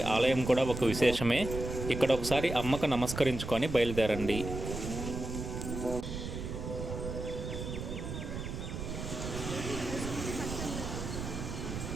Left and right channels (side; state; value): right; noise; rumble, 6 dB below the sound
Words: ఆలయం కూడా ఒక విశేషమే. ఇక్కడ ఒకసారి అమ్మకు నమస్కరించుకొని బయలుదేరండి.